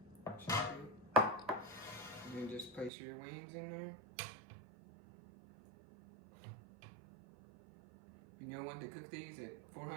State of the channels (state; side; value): drops out; left; at 2.9 s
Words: And then just place your wings in there. You'll want to cook these at